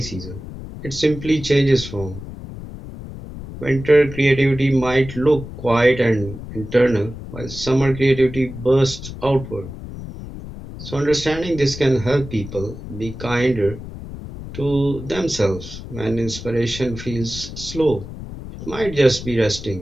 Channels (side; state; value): left; noise; rumble, 11 dB below the sound